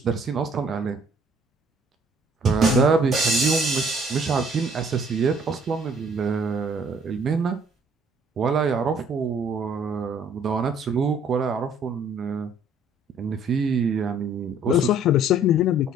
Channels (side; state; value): both; normal; correlation 0.59